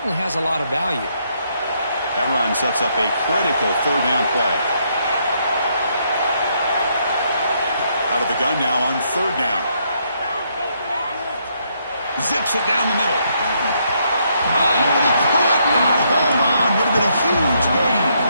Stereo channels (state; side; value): inverted; both; correlation -0.74